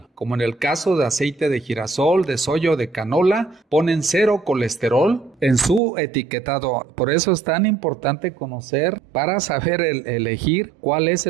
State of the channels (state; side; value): drops out; left; at 5.8 s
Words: como en el caso de aceite de girasol, de soya o de canola, ponen cero colesterol en su etiquetado. Por eso es tan importante conocer para saber elegir cuál es